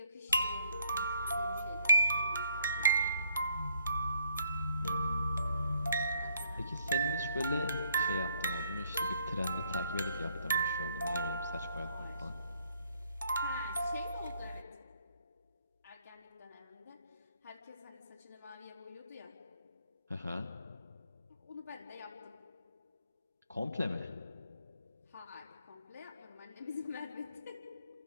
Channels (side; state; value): both; inverted; correlation -0.68